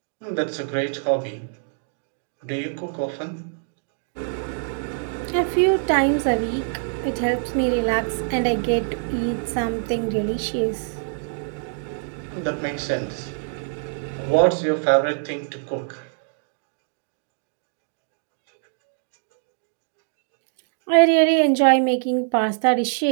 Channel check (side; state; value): left; silent; digital silence